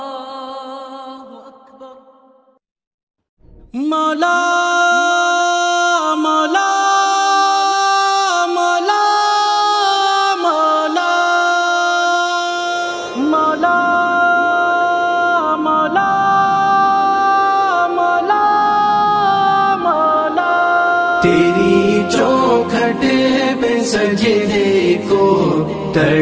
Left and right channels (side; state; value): both; identical; correlation 1.00